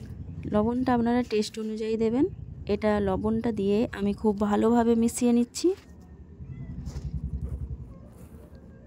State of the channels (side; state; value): both; identical; correlation 1.00